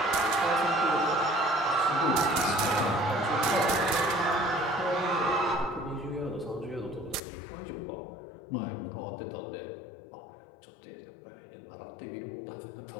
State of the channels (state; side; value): drops out; right; at 7.2 s